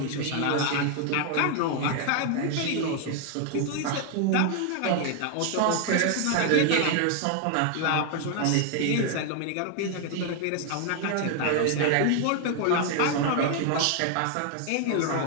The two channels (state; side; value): different; both; correlation 0.00